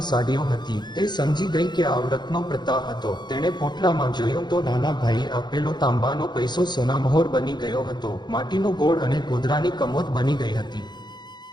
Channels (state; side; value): late; right; 0.21 ms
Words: સાડીઓ હતી. તે સમજી ગઈ કે આ વ્રતનો પ્રતાપ હતો. તેણે પોટલામાં જોયું તો નાના ભાઈએ આપેલો તાંબાનો પૈસો સોનામહોર બની ગયો હતો. માટીનો ગોળ અને ગોદરાની કમોદ બની ગઈ હતી.